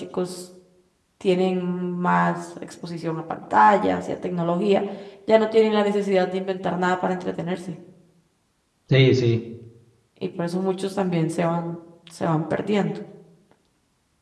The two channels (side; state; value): both; identical; correlation 1.00